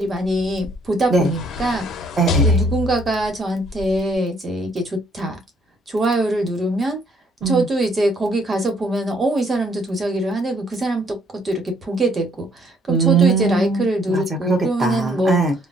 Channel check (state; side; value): normal; both; correlation 0.66